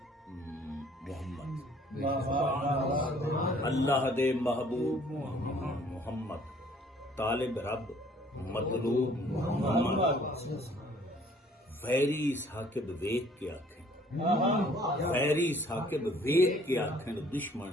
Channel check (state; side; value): normal; both; correlation 0.58